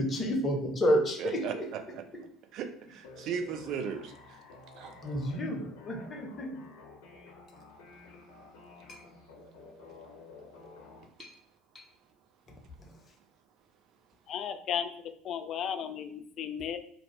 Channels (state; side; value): normal; both; correlation 0.61